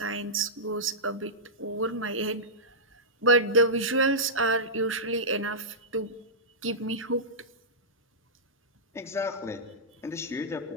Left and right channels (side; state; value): both; normal; correlation -0.13